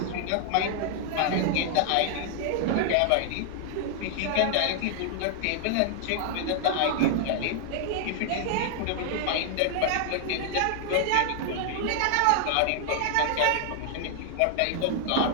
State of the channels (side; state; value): both; different; correlation -0.01